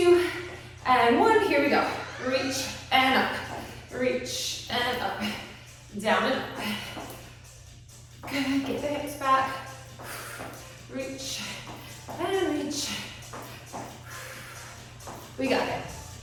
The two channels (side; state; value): both; identical; correlation 1.00